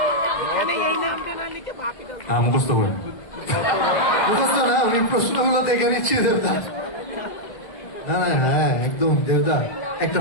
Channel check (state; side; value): late; right; 1.9 ms